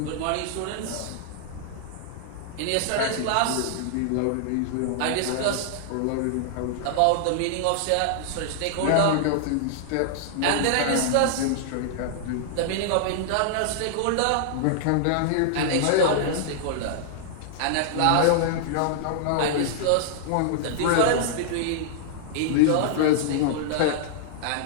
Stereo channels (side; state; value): both; different; correlation -0.01